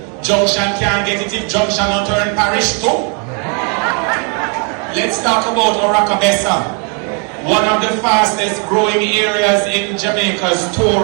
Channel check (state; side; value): quieter; left; 38.3 dB